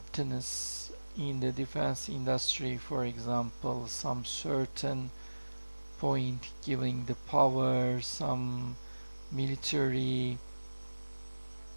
in the defense industry. For example, some certain point giving the power, some military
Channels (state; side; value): inverted; both; correlation -1.00